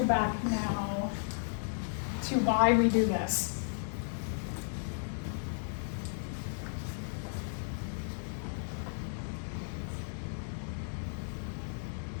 now to why we do this.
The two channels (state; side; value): silent; right; digital silence